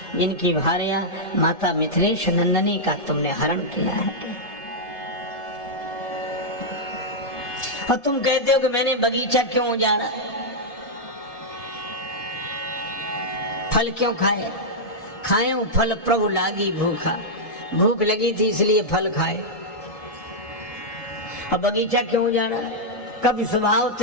जिनकी भार्या माता मिथिलेश नंदनी का तुमने हरण किया है। और तुम कहते हो कि मैंने बगीचा क्यों उजाड़ा? फल क्यों खाए? वो फल प्रभु लागी भूखा। भूख लगी थी इसलिए फल खाए। अब बगीचा क्यों उजाड़ा? कभी स्वभाव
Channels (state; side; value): late; right; 1.7 ms